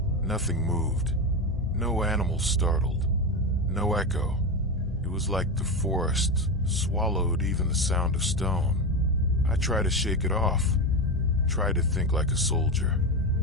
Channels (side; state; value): both; normal; correlation 0.16